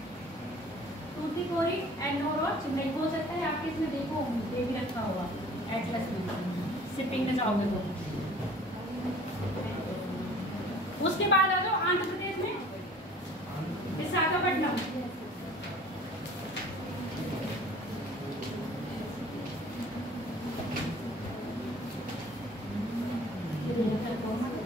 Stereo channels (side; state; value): both; normal; correlation 0.49